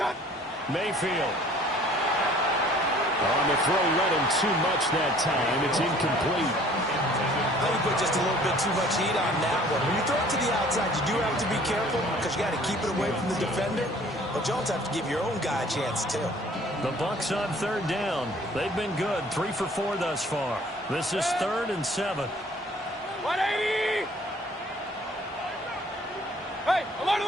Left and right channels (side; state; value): both; normal; correlation 0.54